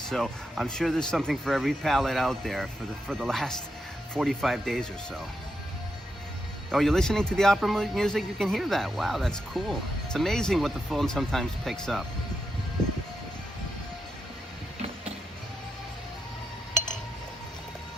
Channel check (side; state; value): both; normal; correlation 0.84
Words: so I'm sure there's something for every palate out there for the last 45 days or so. Oh, you're listening to the opera music? You can hear that. Wow, that's cool. It's amazing what the phone sometimes picks up.